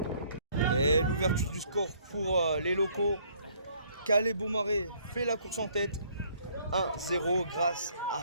Et l'ouverture du score pour les locaux. Calais Beaumarais fait la course en tête. 1-0 grâce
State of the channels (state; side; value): inverted; both; correlation -0.63